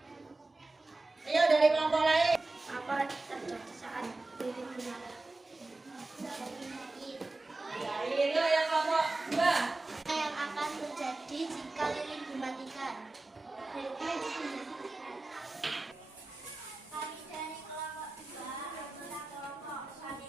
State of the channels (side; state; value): left; quieter; 3.1 dB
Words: Ayo dari kelompok lain. Apa terjadi saat lilin menyala? Dari yang kelompok 2. Apa yang akan terjadi jika lilin dimatikan? Kami dari kelompok 2 adalah kelompok